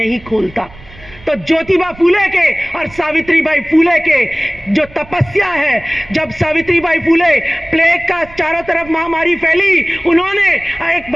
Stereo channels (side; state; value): right; noise; rumble, 20 dB below the sound